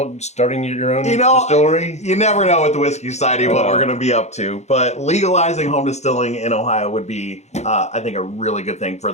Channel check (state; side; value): late; right; 0.33 ms